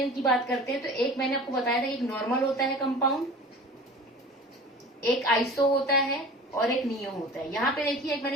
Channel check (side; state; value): both; normal; correlation 0.40